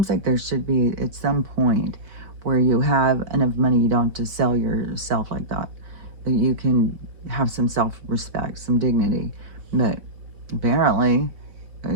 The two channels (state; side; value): late; left; 4.5 ms